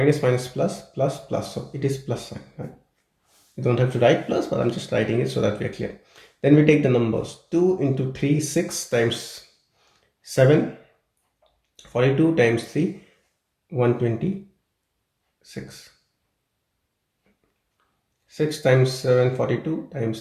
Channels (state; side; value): identical; both; correlation 1.00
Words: minus, plus, plus, plus. So it is plus sign, right? You don't have to write plus, but I'm just writing it so that we are clear. Then we take the numbers. 2 into 3, 6 times 7, 42 times 3, 126. 6 times 7, 42 times